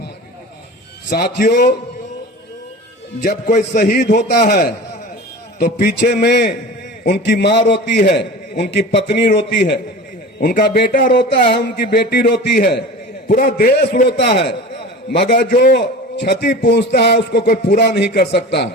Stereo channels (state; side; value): normal; both; correlation 0.35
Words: साथियों, जब कोई शहीद होता है तो पीछे में उनकी माँ रोती है, उनकी पत्नी रोती है, उनका बेटा रोता है, उनकी बेटी रोती है, पूरा देश रोता है, मगर जो क्षति पहुंचता है उसको कोई पूरा नहीं कर सकता।